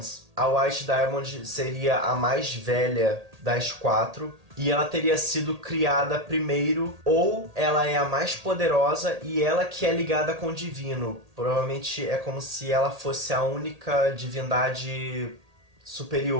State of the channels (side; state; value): left; late; 1.8 ms